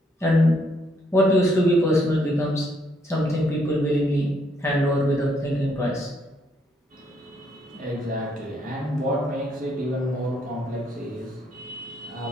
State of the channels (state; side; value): normal; both; correlation 0.72